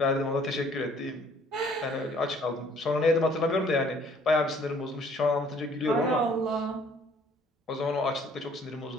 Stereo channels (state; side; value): normal; both; correlation 0.58